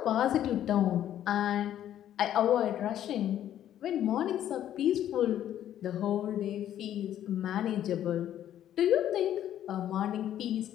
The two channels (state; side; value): quieter; right; 11.3 dB